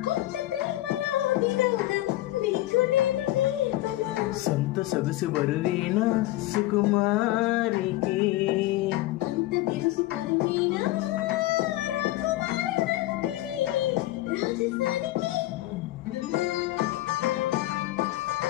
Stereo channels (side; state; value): right; quieter; 16.4 dB